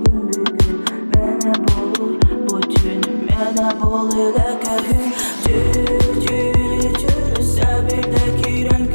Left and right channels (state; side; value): inverted; both; correlation -1.00